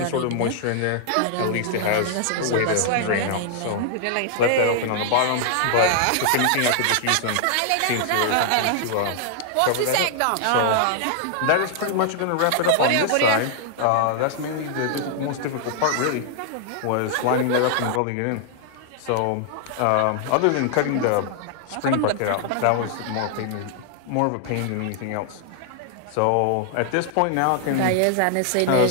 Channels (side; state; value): both; different; correlation 0.00